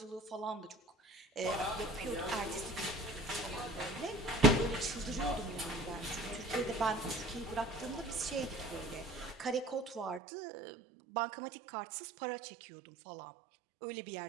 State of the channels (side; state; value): left; drops out; at 10.2 s